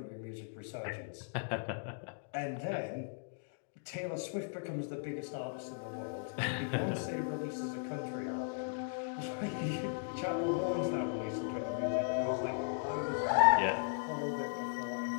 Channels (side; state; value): right; silent; digital silence